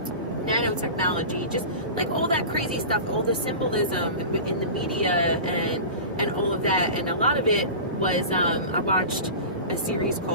nanotechnology, just like all that crazy stuff, all the symbolism in the media and all of that. And a lot of it was, I watched a series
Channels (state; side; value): inverted; both; correlation -0.32